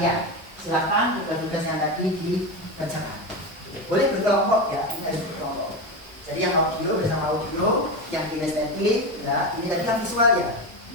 Silakan tugas-tugas yang tadi dikerjakan. Boleh berkelompok ya, ini harus berkelompok. Jadi yang audio bersama audio, yang kinestetik, ya, ini tadi yang visual ya.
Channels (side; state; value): both; normal; correlation 0.18